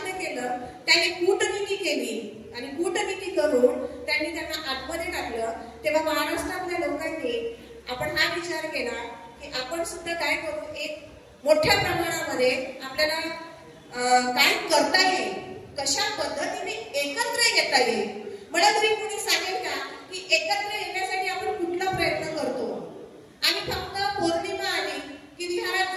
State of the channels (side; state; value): both; identical; correlation 1.00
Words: केलं. त्यांनी कूटनीती केली आणि कूटनीती करून त्यांनी त्यांना आतमध्ये टाकलं. तेव्हा महाराष्ट्रातल्या लोकांनी आपण हा विचार केला की आपण सुद्धा काय करू, एक मोठ्या प्रमाणामध्ये आपल्याला काय करता येईल, कशा पद्धतीने एकत्र येता येईल. मला तरी कोणी सांगेल का की एकत्र येण्यासाठी आपण कुठला प्रयत्न करतो? आणि फक्त पौर्णिमा आली की विहारात